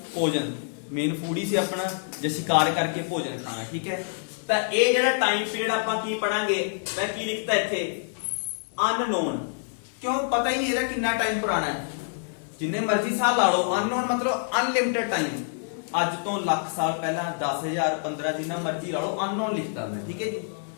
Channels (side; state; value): right; silent; digital silence